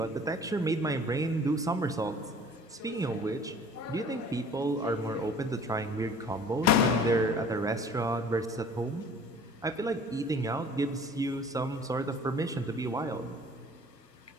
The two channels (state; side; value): normal; both; correlation 0.48